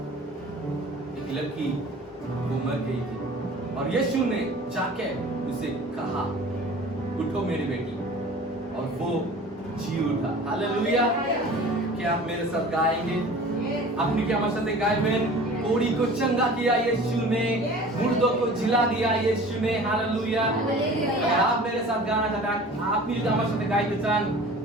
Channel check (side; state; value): both; normal; correlation 0.43